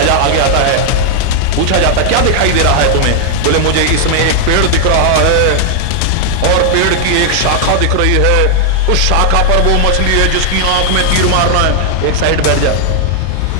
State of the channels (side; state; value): both; different; correlation -0.01